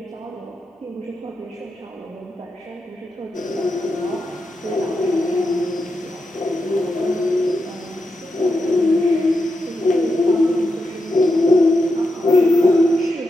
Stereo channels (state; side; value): normal; both; correlation 0.86